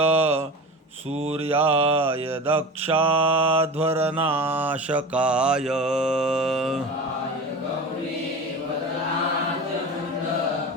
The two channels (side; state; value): both; normal; correlation 0.31